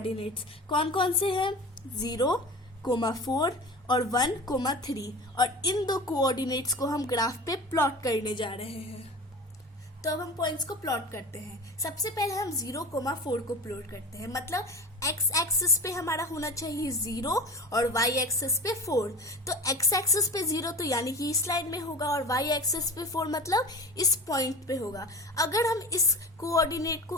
कौन कौन से हैं? 0, 4 और 1, 3। और इन दो कोऑर्डिनेट्स को हम ग्राफ पे प्लॉट करने जा रहे हैं। तो अब हम पॉइंट्स को प्लॉट करते हैं। सबसे पहले हम 0, 4 को प्लॉट करते हैं, मतलब x एक्सिस पे हमारा होना चाहिए 0 और y एक्सिस पे 4। तो x एक्सिस पे 0 तो यानी कि इस लाइन में होगा, और y एक्सिस पे 4 मतलब इस पॉइंट पे होगा। अगर हम इस कोऑर्डिनेट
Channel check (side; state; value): both; normal; correlation 0.33